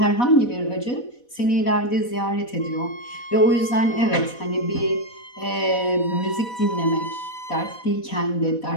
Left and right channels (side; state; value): right; late; 4.1 ms